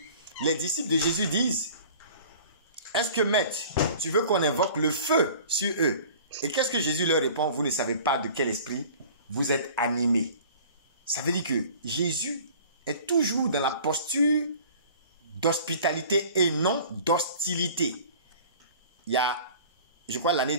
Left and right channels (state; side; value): inverted; both; correlation -0.46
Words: les disciples de Jésus disent, est-ce que, maître, tu veux qu'on invoque le feu sur eux? Et qu'est-ce que Jésus leur répond? Vous ne savez pas de quel esprit vous êtes animés. Ça veut dire que Jésus est toujours dans la posture d'hospitalité et non d'hostilité. Il y a, je crois, l'année